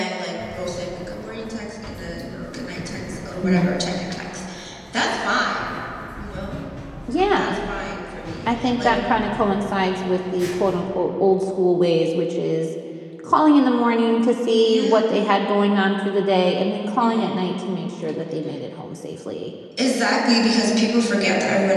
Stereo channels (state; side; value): identical; both; correlation 1.00